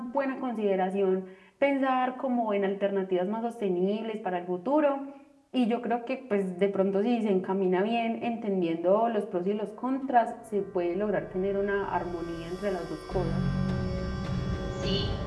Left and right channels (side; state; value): both; identical; correlation 1.00